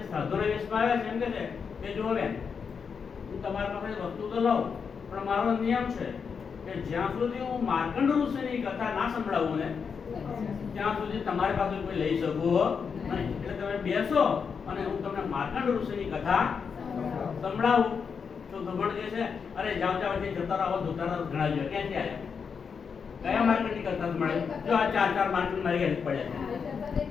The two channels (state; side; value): quieter; right; 6.1 dB